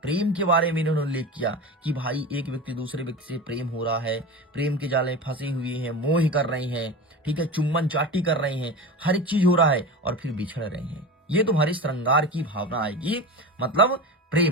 के बारे में इन्होंने उल्लेख किया कि भाई एक व्यक्ति दूसरे व्यक्ति से प्रेम हो रहा है, प्रेम के जाले फंसे हुए हैं, मोह कर रहे हैं, ठीक है, चुम्बन चाटी कर रहे हैं, हर एक चीज हो रहा है, और फिर बिछड़ रहे हैं। ये तुम्हारी श्रृंगार की भावना आएगी, मतलब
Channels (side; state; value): both; normal; correlation 0.28